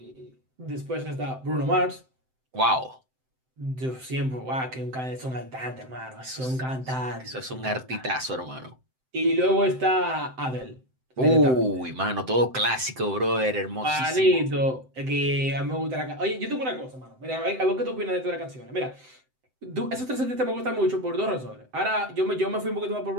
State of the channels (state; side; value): late; left; 7.8 ms